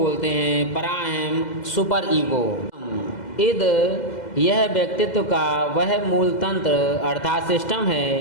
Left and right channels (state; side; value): late; right; 2.0 ms